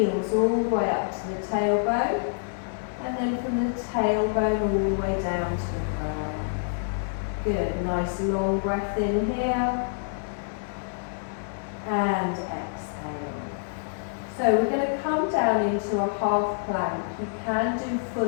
all the way up to the tailbone. And then from the tailbone all the way down to the crown. Good. Nice long breath in here. And exhale. So we're going to come down into a half plank. You can do full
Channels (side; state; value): right; silent; 60 dB below the other